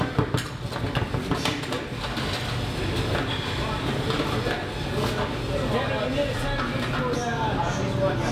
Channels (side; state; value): both; identical; correlation 1.00